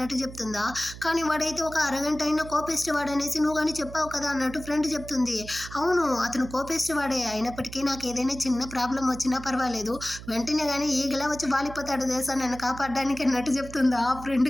చెప్తుందా. కానీ వాడైతే ఒక అరగంట అయినా కోపిస్ట్ వాడనేసి నువ్వు కానీ చెప్పావు కదా అన్నట్టు ఫ్రెండ్ చెప్తుంది. అవును అతను కోపిస్ట్ వాడే, అయినప్పటికీ నాకు ఏదైనా చిన్న ప్రాబ్లం వచ్చినా పర్వాలేదు, వెంటనే కానీ ఈగలా వచ్చి వాలిపోతాడు తెలుసా నన్ను కాపాడడానికి అన్నట్టు చెప్తుందా. ఆ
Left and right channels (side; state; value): right; noise; hum, 14 dB below the sound